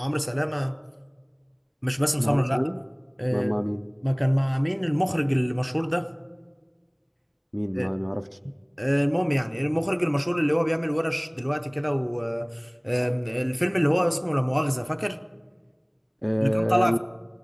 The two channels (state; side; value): identical; both; correlation 1.00